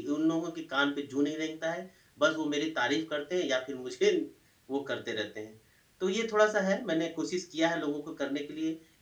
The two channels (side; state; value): both; identical; correlation 1.00